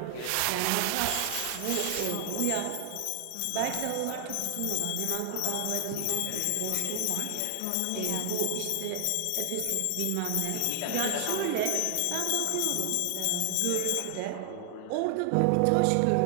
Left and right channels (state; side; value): different; both; correlation 0.00